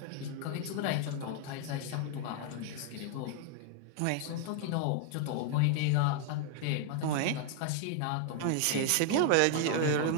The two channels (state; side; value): different; both; correlation 0.00